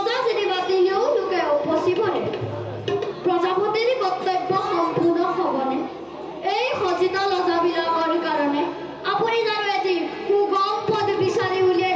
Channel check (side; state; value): both; identical; correlation 1.00